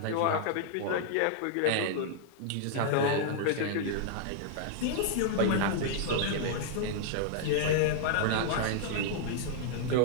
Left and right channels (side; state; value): both; different; correlation -0.01